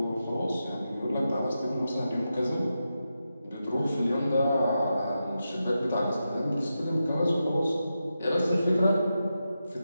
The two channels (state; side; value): inverted; both; correlation -0.89